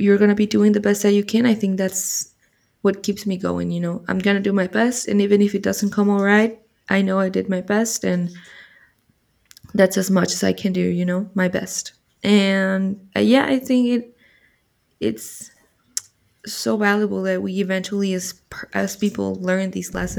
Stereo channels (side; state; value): both; identical; correlation 1.00